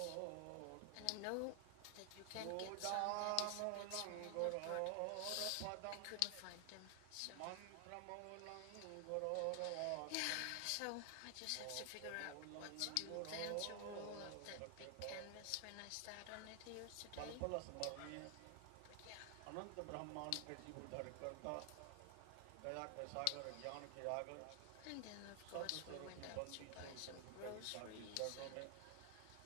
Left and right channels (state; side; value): different; both; correlation 0.00